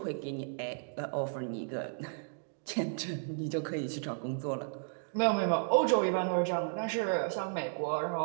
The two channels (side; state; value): left; silent; digital silence